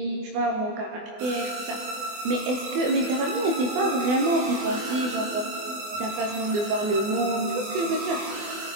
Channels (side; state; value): left; late; 24 ms